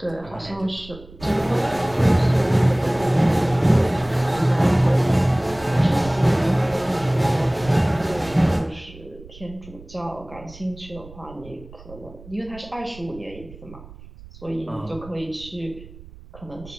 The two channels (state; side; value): noise; right; rumble, 19 dB below the sound